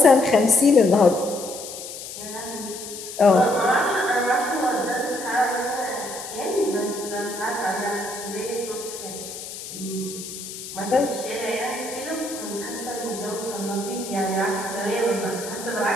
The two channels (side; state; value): left; noise; hiss, 10 dB below the sound